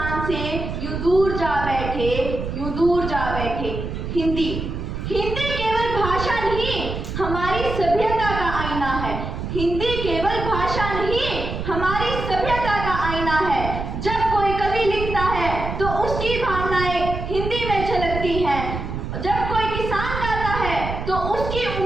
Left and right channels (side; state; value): right; noise; rumble, 5 dB below the sound